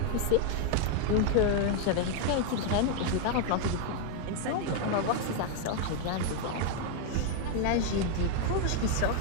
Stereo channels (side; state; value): both; different; correlation 0.00